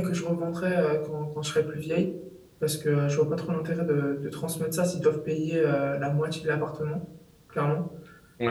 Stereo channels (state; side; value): identical; both; correlation 1.00